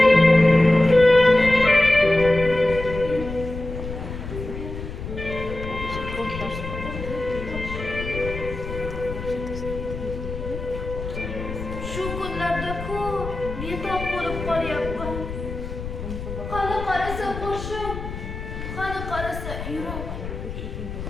Shu kunlarda-ku betob bo'lib qolyapman. Qani qarasa boshim, qani qarasa yurak.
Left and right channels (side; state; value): left; noise; rumble, 8 dB below the sound